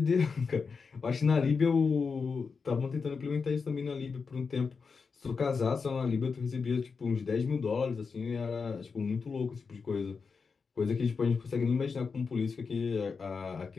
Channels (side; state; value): right; quieter; 5.1 dB